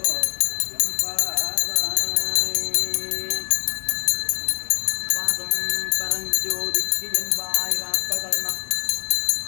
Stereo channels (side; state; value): right; silent; 62 dB below the other